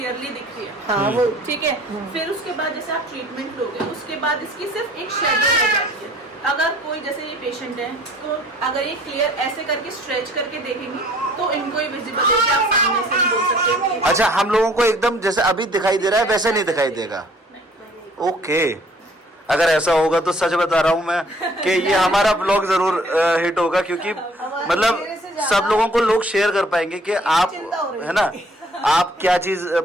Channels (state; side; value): normal; both; correlation 0.56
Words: दिख रही है, हाँ वो ठीक है। फिर उसके बाद जैसे आप ट्रीटमेंट लोगे उसके बाद इसकी सिर्फ एक शेडो रह जाती है। अगर कोई जैसे ये पेशेंट है तो अगर ये क्लियर ऐसे करके स्ट्रेच करके देखेंगे तो इनको ही विजिबल है, कि आप सामने से नहीं बोल सकते कि अच्छा, हम लोगों को एकदम जैसे अभी दिखाई दे रहा है वैसे नहीं दिखाई देगा। ओके, अगर ऐसा होगा तो सच बता रहा हूँ मैं कि ये हमारा ब्लॉग जरूर हिट होगा, क्योंकि मतलब सब लोगों को लोग शेयर कर पाएंगे कि आप, है ना, आप क्या चीज